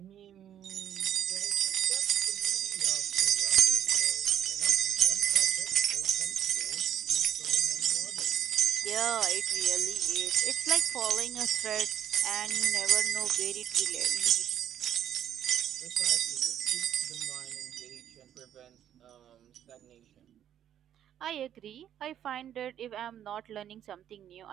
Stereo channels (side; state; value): left; quieter; 10.4 dB